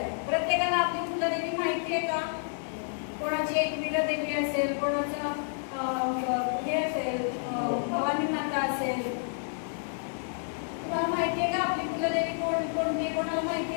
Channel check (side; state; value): right; silent; 58 dB below the other